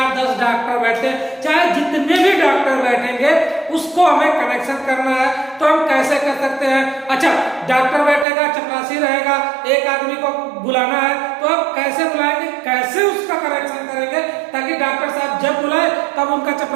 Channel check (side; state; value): left; drops out; at 8.2 s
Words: 10 डॉक्टर बैठते हैं, चाहे जितने भी डॉक्टर बैठेंगे उसको हमें कनेक्शन करना है तो हम कैसे कर सकते हैं। अच्छा, डॉक्टर बैठेगा, चपरासी रहेगा, एक आदमी को बुलाना है तो अब कैसे बुलाएंगे, कैसे उसका कनेक्शन करेंगे ताकि डॉक्टर साहब जब बुलाए तब उनका